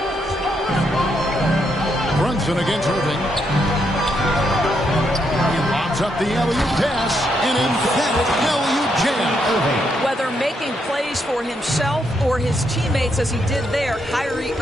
Against Irving. He lobs up the alley-oop pass, an emphatic alley-oop jam. Whether making plays for himself or his teammates as he did there, Kyrie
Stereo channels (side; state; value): both; normal; correlation 0.78